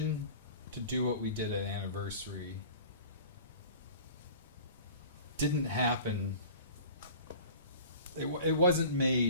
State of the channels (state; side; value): inverted; both; correlation -0.43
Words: to do what we did at Anniversary didn't happen. It wasn't